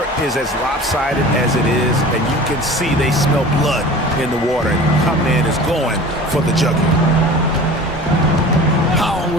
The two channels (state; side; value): normal; both; correlation 0.40